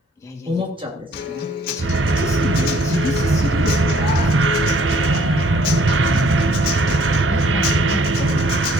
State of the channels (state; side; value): normal; both; correlation 0.61